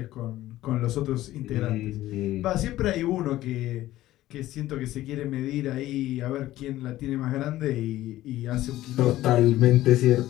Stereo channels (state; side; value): quieter; right; 15.2 dB